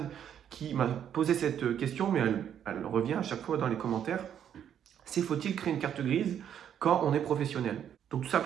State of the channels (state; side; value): quieter; left; 9.3 dB